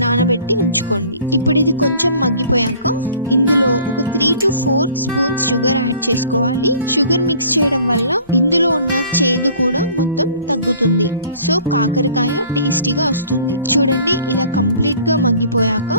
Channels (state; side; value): inverted; both; correlation -0.51